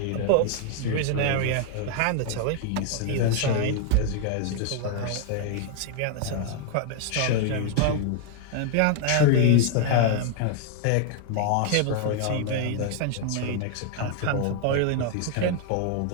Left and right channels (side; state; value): both; different; correlation 0.00